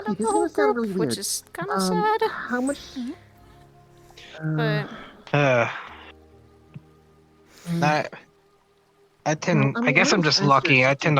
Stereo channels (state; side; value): identical; both; correlation 1.00